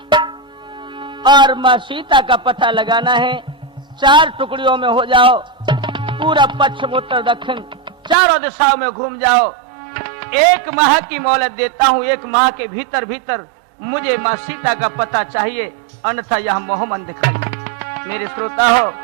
और मां सीता का पता लगाना है। 4 टुकड़ियों में हो जाओ, पूरा पश्चिम उत्तर दक्षिण चारों दिशाओं में घूम जाओ। 1 माह की मोहलत देता हूं, 1 माह के भीतर भीतर मुझे मां सीता का पता चाहिए, अन्यथा यह मोहमन दिखाइए। मेरे श्रोता हो,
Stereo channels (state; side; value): drops out; left; at 8.2 s